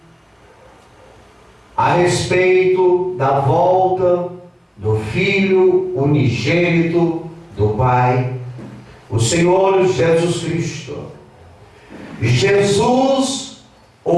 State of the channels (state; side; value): identical; both; correlation 1.00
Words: a respeito da volta do Filho unigênito do Pai, o Senhor Jesus Cristo. Jesus,